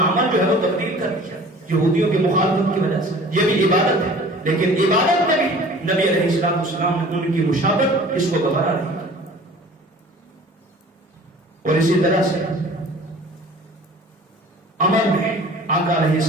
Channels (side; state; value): both; normal; correlation 0.46